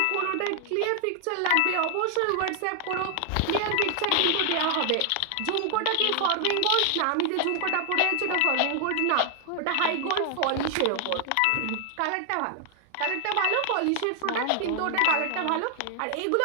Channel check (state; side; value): different; both; correlation 0.00